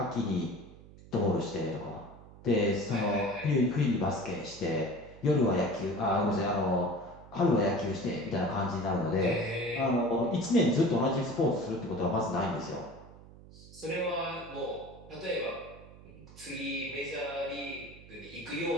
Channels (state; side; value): noise; right; hum, 19 dB below the sound